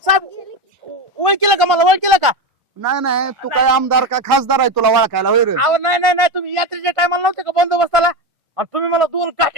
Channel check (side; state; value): both; normal; correlation 0.16